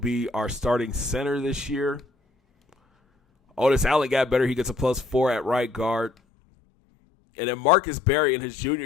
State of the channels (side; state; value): right; drops out; at 6.1 s